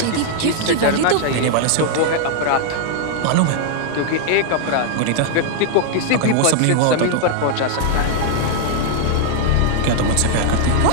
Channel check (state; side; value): different; both; correlation 0.00